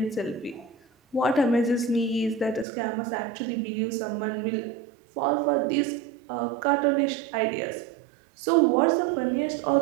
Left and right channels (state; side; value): drops out; left; at 2.7 s